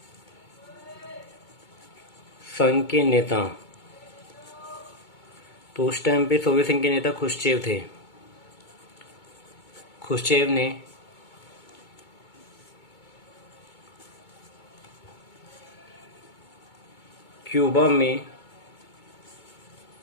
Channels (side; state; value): right; late; 2.2 ms